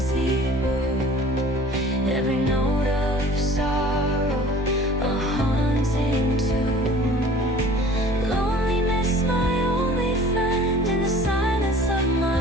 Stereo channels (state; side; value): normal; both; correlation 0.47